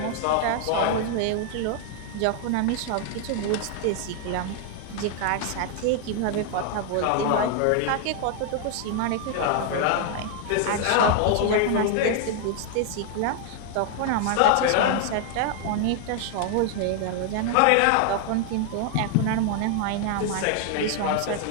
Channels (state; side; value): different; both; correlation 0.00